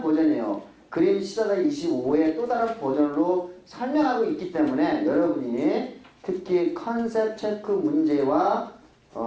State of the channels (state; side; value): identical; both; correlation 1.00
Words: 버전이에요. 그림 14-25의 또 다른 버전으로 설명하고 있기 때문에 여러분이 특히 컨셉 체크 문제와